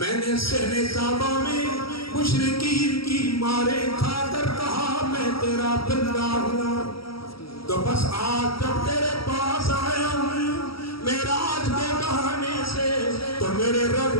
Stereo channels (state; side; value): late; right; 0.75 ms